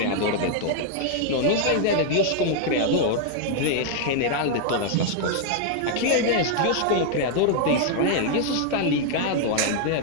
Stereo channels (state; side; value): different; both; correlation 0.00